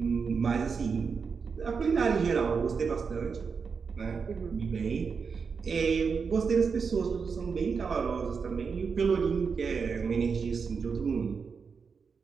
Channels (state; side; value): quieter; left; 5.6 dB